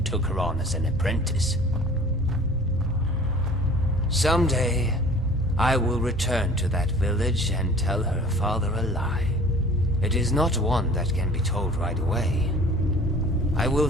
took her on as an apprentice. Someday, I will return to that village and tell her father a lie. It is not one that can be told right away. I will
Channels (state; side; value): normal; both; correlation 0.47